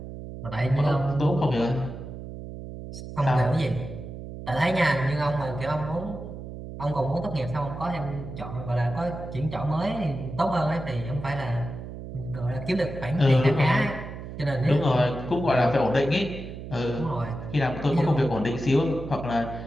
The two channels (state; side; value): noise; right; hum, 10 dB below the sound